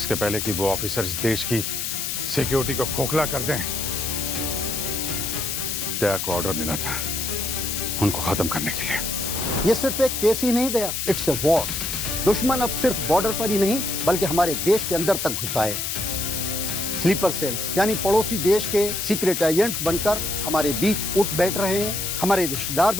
पहले कि वो ऑफिसर इस देश की सिक्योरिटी को खोखला कर दें, दया को ऑर्डर मिला था उनको खत्म करने के लिए। ये सिर्फ एक केस ही नहीं दया, इट्स ए वॉर। दुश्मन अब सिर्फ बॉर्डर पर ही नहीं बल्कि हमारे देश के अंदर तक घुसा है। स्लीपर सेल्स यानी पड़ोसी देश के सीक्रेट एजेंट्स बनकर हमारे बीच उठ बैठ रहे हैं, हमारे रिश्तेदार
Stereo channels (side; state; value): left; noise; hiss, 2 dB below the sound